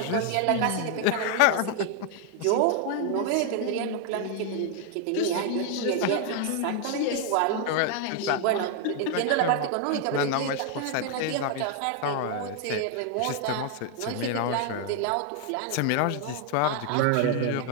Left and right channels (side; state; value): both; different; correlation 0.00